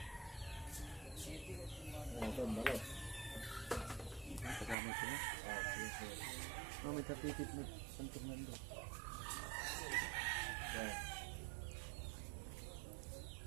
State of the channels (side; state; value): left; drops out; at 4.8 s